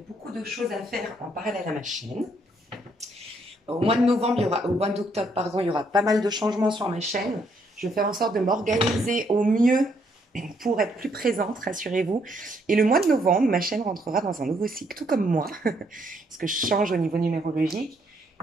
beaucoup de choses à faire en parallèle à ma chaîne. Au mois de novembre, au mois d'octobre, pardon, il y aura pas mal de changements sur ma chaîne. Je vais faire en sorte de m'organiser au mieux pour être plus présente, rassurez-vous. Et le mois de novembre, ma chaîne rentrera dans un nouveau cycle, tout comme moi, parce que je change au niveau numérologique.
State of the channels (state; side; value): normal; both; correlation 0.71